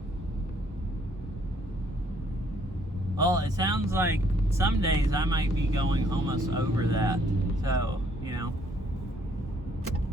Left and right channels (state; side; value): normal; both; correlation 0.66